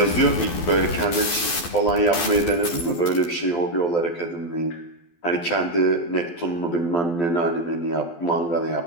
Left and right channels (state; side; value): late; right; 12 ms